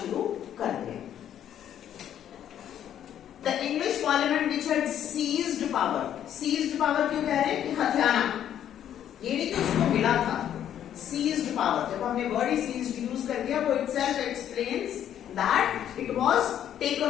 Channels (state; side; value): quieter; right; 10.3 dB